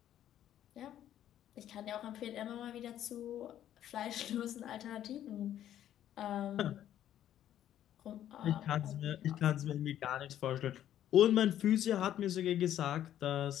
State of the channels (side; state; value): right; quieter; 11.4 dB